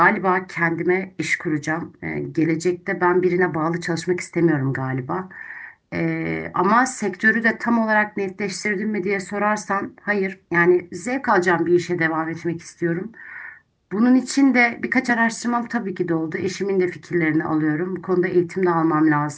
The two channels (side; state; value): both; identical; correlation 1.00